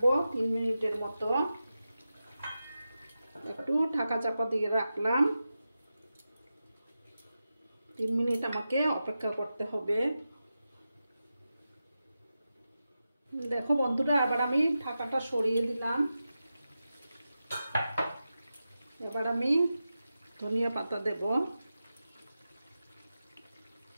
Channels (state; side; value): inverted; both; correlation -0.91